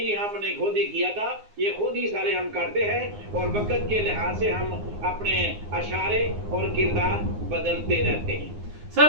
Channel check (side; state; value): left; late; 9.6 ms